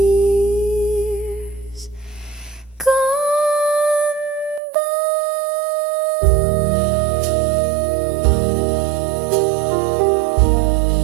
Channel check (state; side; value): drops out; left; at 4.6 s